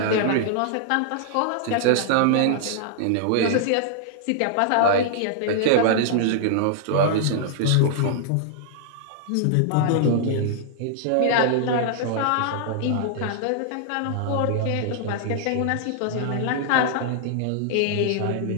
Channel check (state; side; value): different; both; correlation -0.01